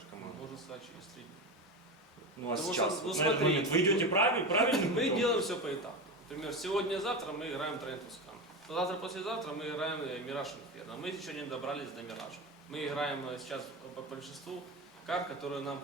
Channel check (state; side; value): normal; both; correlation 0.21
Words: команду? Можно сказать через 3 дня. Ну а Потому сейчас, что, вот ну, на этот смотри, момент, вы идете правильно? Мы делаем все по этапу. Например, сегодня-завтра мы играем Train to Scan. Завтра-послезавтра мы играем Mirage Inferno. Мы еще не добрались до Mirage. Мы играем сейчас по большинству карт, которые нам